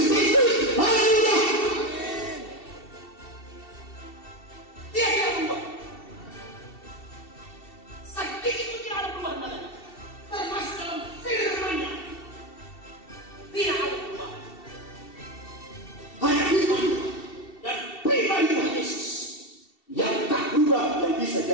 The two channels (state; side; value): late; right; 2.7 ms